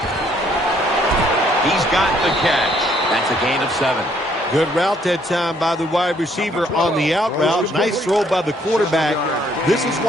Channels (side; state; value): both; normal; correlation 0.66